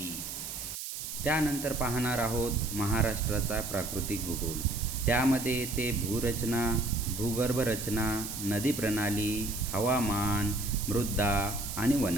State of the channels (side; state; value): right; noise; hiss, 7 dB below the sound